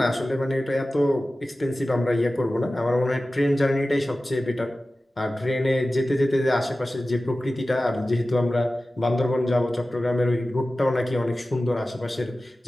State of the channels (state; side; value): normal; both; correlation 0.95